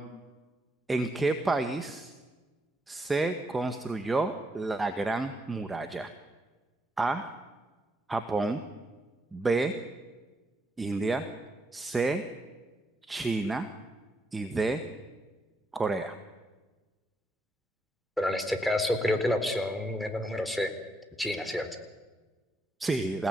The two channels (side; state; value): both; normal; correlation 0.79